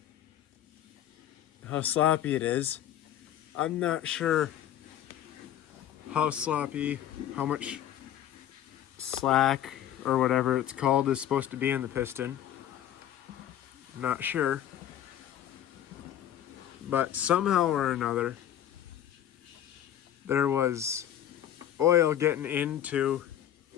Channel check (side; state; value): right; quieter; 11.1 dB